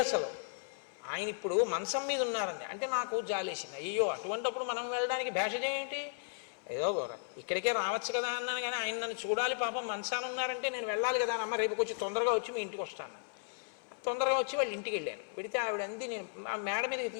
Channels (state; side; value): silent; right; 54 dB below the other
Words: అసలు, ఆయన ఇప్పుడు మంచం మీద ఉన్నారండి. అంటే నాకు జాలేసింది, అయ్యో అటువంటిప్పుడు మనం వెళ్ళడానికి భేషజం ఏంటి, ఏదో ఇక్కడికే రావచ్చు కదా అన్నాను. కానీ ఆయన నన్ను చూడాలి, పాపం మంచాన ఉన్నారంటే నేను వెళ్ళాలి కదా అమ్మ, రేపు కొంచెం తొందరగా వచ్చి మీ ఇంటికి వస్తాను. తొందరగా వచ్చి వాళ్ళ ఇంటికి వెళ్ళాను. వెళితే ఆవిడంది, నేను ఆ మేడ మీదకి